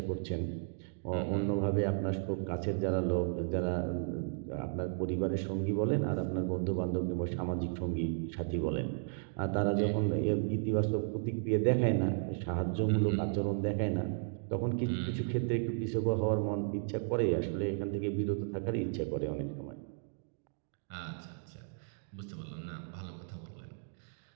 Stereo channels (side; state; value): left; silent; digital silence